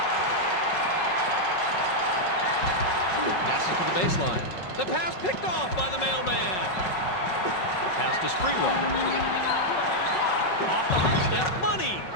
Passes to the baseline. The pass picked off by the mailman. Pass to Sprewell. Off the hot step. Money.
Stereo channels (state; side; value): late; right; 5.4 ms